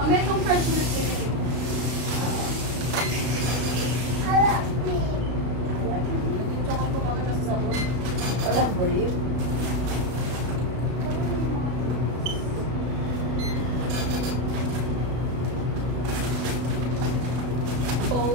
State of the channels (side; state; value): left; late; 33 ms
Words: May kong fresh milk din. Tsaka ko baka nasa sabon. Walang believe.